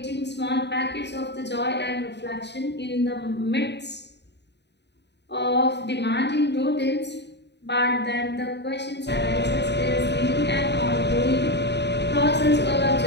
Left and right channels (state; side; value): late; right; 0.50 ms